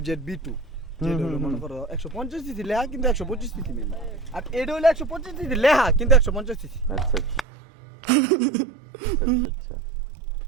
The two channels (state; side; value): drops out; left; at 7.5 s